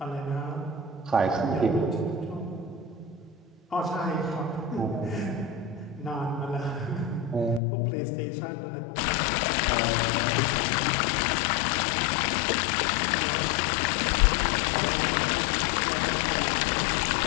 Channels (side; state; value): right; drops out; at 7.6 s